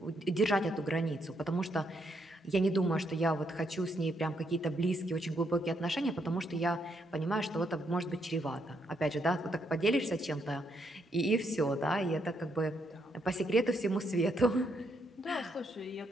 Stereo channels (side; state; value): both; normal; correlation 0.76